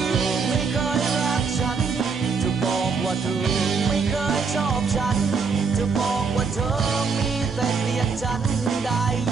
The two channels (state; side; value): quieter; left; 5.2 dB